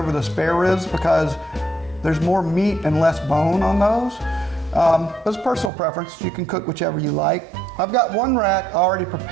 the spare ribs because there's more meat and less bone on those. It's personal preference. You can cook whichever you like. I've got one rack already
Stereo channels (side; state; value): left; drops out; at 5.7 s